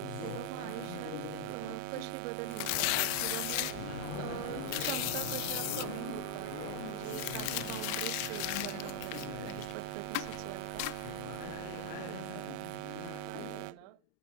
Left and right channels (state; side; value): different; both; correlation 0.00